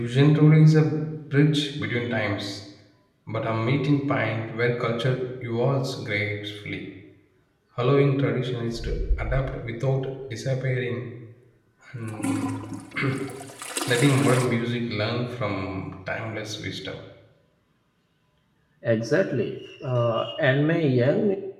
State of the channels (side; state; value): both; identical; correlation 1.00